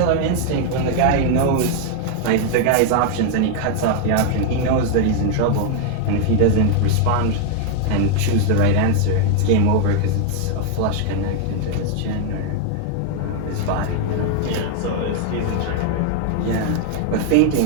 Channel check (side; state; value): both; different; correlation 0.00